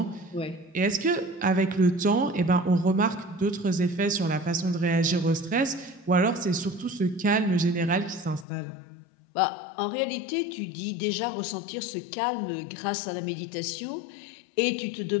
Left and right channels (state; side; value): drops out; right; at 8.5 s